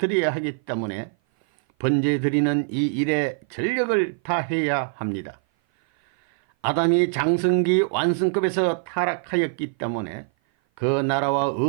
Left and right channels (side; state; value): left; silent; 57 dB below the other